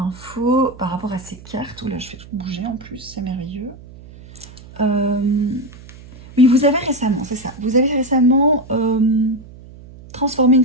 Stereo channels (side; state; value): right; noise; hum, 19 dB below the sound